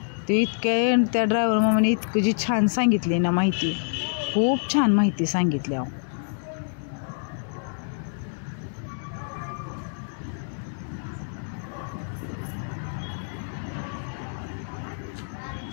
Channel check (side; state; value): right; silent; digital silence